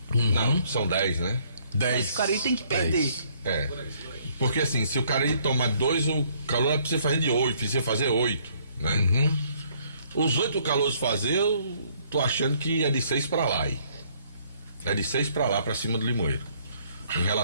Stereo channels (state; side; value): inverted; both; correlation -0.65